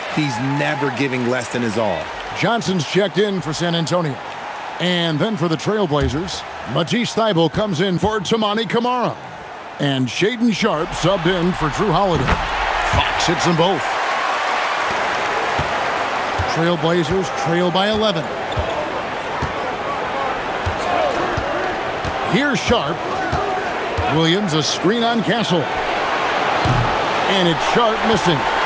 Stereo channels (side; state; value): both; identical; correlation 1.00